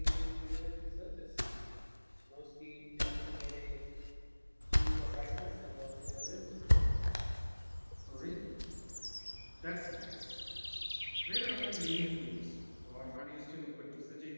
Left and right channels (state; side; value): inverted; both; correlation -1.00